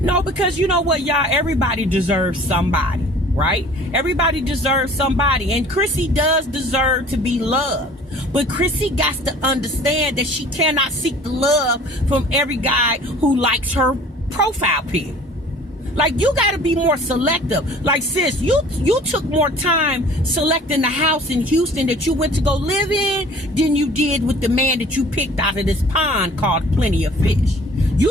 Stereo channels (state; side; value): normal; both; correlation 0.48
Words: because you know what, y'all, everybody deserves somebody, right? Everybody deserves somebody, and Chrissy does deserve to be loved. But Chrissy got to understand that she cannot seek the love from every guy who likes her profile pic. Like, you got to be more selective. Like, sis, you took more time selecting the house in Houston that you went to go live in than you did with the man that you picked out of this pond called Plenty of Fish.